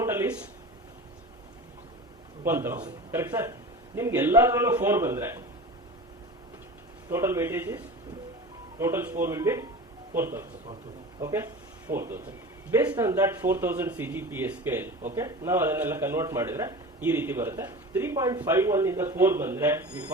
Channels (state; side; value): normal; both; correlation 0.33